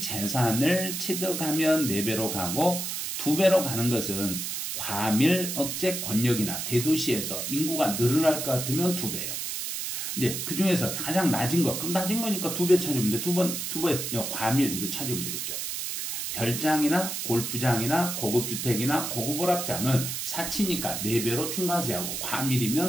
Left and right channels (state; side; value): noise; right; hiss, 4 dB below the sound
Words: 취득하면 4배로 가고, 2배로 가는 것은 과밀 억제 권역이나 대도시에서 인구가 늘어날 것 같으면 2배예요. 이제 그 중에서 가장 낮은 거, 그럼 낮은 거니까 2배 찾으면 돼. 2배 과밀 이거 찾으면 되겠죠. 별장이나 골프장이나 고급주택이나 고급오락장은 사치니까 4배로 중과세하고,